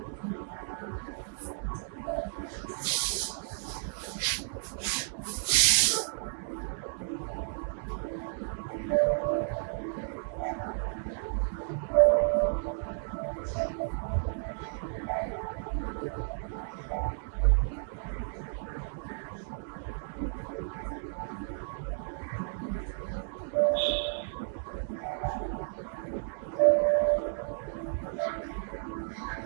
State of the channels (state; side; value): silent; left; 56 dB below the other